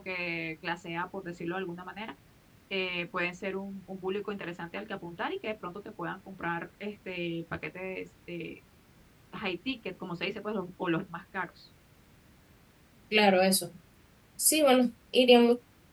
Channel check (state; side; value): identical; both; correlation 1.00